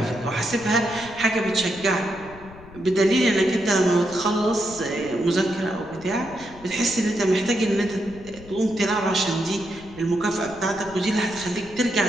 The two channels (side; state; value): left; noise; rumble, 19 dB below the sound